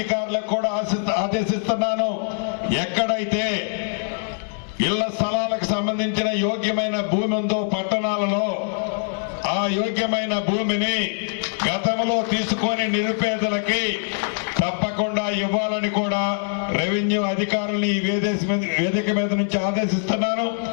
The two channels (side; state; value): right; silent; 63 dB below the other